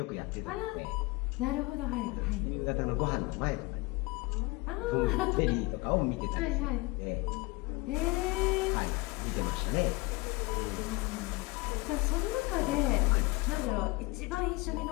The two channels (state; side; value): quieter; right; 23.9 dB